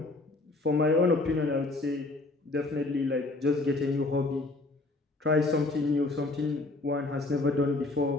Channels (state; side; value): quieter; right; 3.1 dB